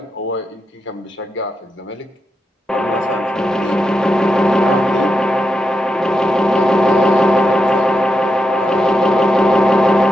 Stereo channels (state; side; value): normal; both; correlation 0.85